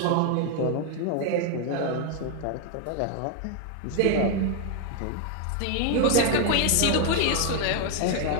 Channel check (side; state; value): both; different; correlation 0.00